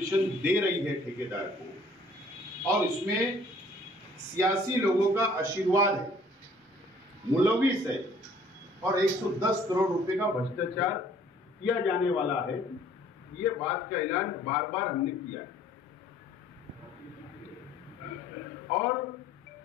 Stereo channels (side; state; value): both; normal; correlation 0.57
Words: दे रही है ठेकेदार को, और इसमें सियासी लोगों का आशीर्वाद है, मुलविस है, और 110 करोड़ रुपए का भ्रष्टाचार किया जाने वाला है। ये बात का ऐलान बार बार हमने किया है। और